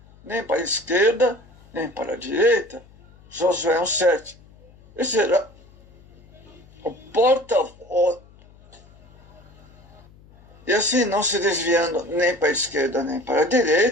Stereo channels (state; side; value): noise; left; hum, 25 dB below the sound